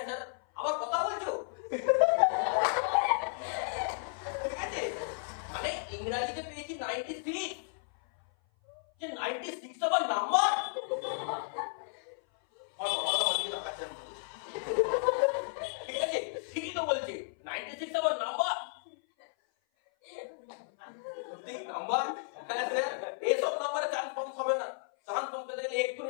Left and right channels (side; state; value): right; silent; 56 dB below the other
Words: স্যার, আবার কথা বলছো, ঠিক আছে, মানে ইংরেজিতে পেয়েছি 96, যে 96 আবার নাম্বার, আর বাবা বলছে না কাছে, ঠিক আছে, ঠিকই তো বলছে 96 আবার নাম্বার, ঠিক নাম্বার, হ্যাঁ স্যার, এইসব নাম্বারে চান্স পাস হবে না, চান্স পাস পেতে গেলে